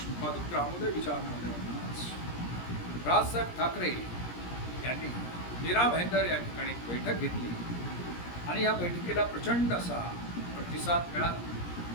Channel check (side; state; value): right; late; 17 ms